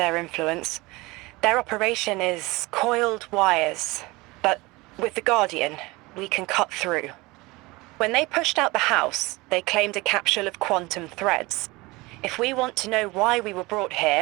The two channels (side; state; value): left; quieter; 22.7 dB